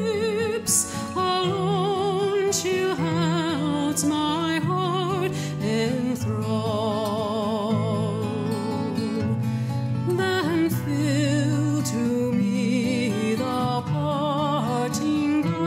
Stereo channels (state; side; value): identical; both; correlation 1.00